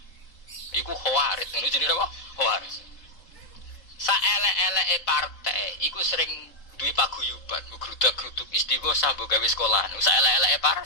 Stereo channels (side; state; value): right; late; 3.7 ms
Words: Iku Khawarij, ngono jenenge apa? Khawarij. Saelek-eleke partai iku sering duwe paguyuban, ngrudak-gruduk istighosah mbok gawe sekolahan. Saelek-eleke